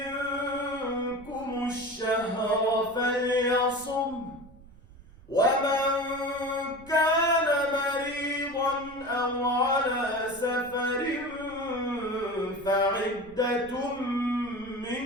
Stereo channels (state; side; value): noise; right; rumble, 22 dB below the sound